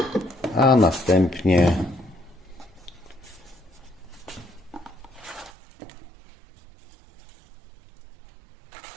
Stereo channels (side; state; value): left; drops out; at 5.5 s